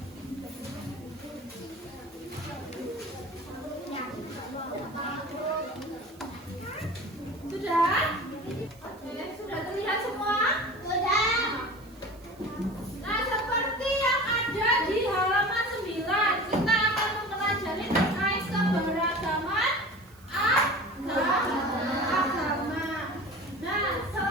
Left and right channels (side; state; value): right; noise; hiss, 27 dB below the sound